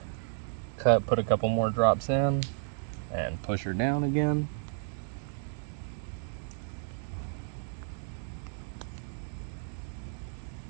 Put a couple more drops in and push her down again.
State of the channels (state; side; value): silent; left; digital silence